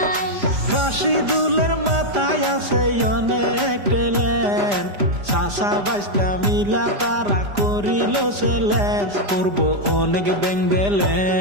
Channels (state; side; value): late; left; 5.0 ms